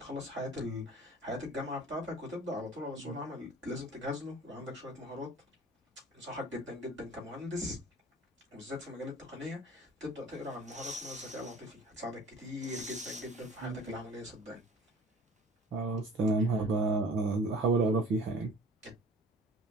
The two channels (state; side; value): normal; both; correlation 0.46